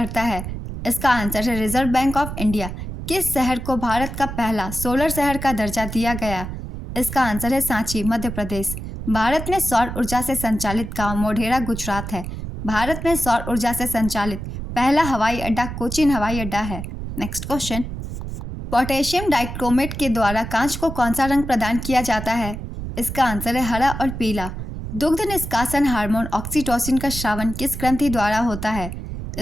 है? इसका आंसर है रिजर्व बैंक ऑफ इंडिया। किस शहर को भारत का पहला सोलर शहर का दर्जा दिया गया? इसका आंसर है सांची, मध्य प्रदेश। भारत में सौर ऊर्जा से संचालित गांव मोढेरा गुजरात है। भारत में सौर ऊर्जा से संचालित पहला हवाई अड्डा कोचीन हवाई अड्डा है। नेक्स्ट क्वेश्चन, पोटेशियम डाइक्रोमेट के द्वारा कांच को कौन सा रंग प्रदान किया जाता है? इसका आंसर है हरा और पीला। दुग्ध निष्कासन हार्मोन ऑक्सीटोसिन का श्रावण किस ग्रंथि द्वारा होता है?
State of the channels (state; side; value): noise; right; rumble, 7 dB below the sound